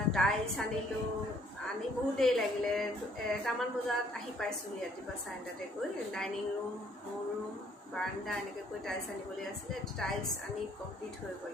টাইলছ আনিলোঁ, আনি বহুত দেৰি লাগিলে। 1টামান বজাত আহি পাইছোঁহি ৰাতিপুৱা 9:30টাতে গৈ। ডাইনিং ৰুম, মোৰ ৰুম, বাৰাণ্ডা এনেকৈ গৈ টাইলছ আনিবলৈ আছিলে। টাইলছ আনি কমপ্লিট হৈ গ'ল।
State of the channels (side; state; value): both; normal; correlation 0.64